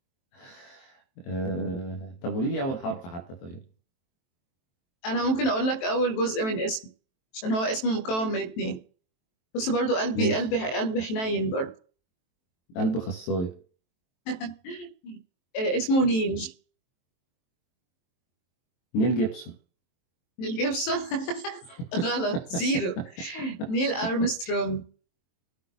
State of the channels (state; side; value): late; right; 23 ms